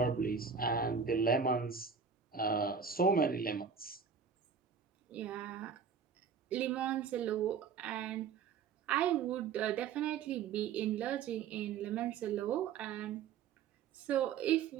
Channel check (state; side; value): quieter; left; 6.5 dB